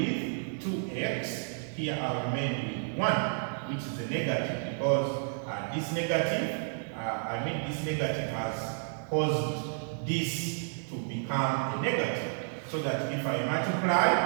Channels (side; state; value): left; silent; 57 dB below the other